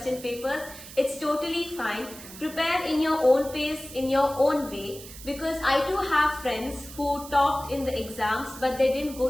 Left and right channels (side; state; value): right; noise; hiss, 15 dB below the sound